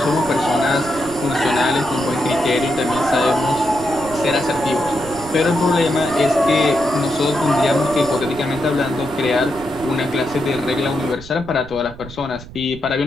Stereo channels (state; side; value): noise; right; rumble, 16 dB below the sound